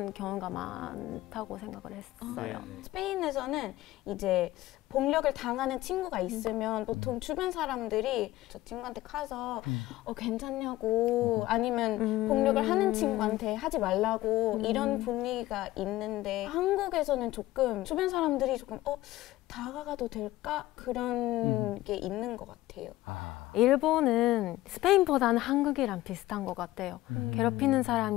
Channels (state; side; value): quieter; right; 16.8 dB